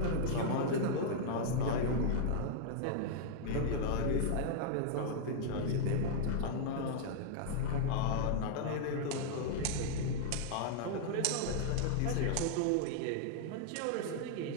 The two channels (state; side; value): different; both; correlation -0.01